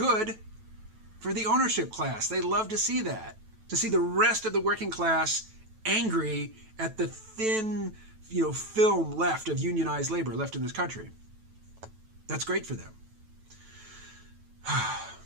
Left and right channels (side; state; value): left; late; 9.1 ms